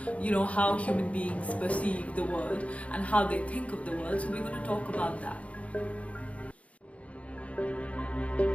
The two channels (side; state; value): right; late; 0.065 ms